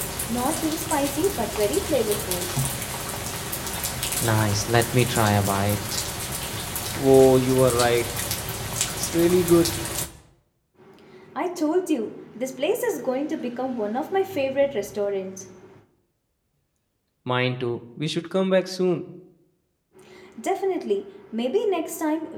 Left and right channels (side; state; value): both; identical; correlation 1.00